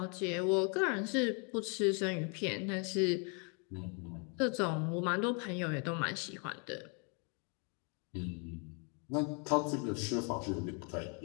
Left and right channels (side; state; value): right; quieter; 36.9 dB